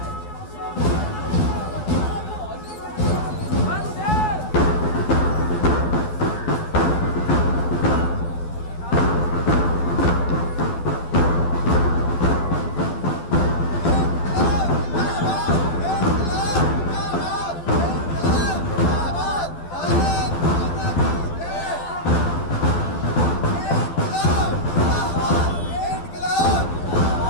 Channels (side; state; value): right; late; 12 ms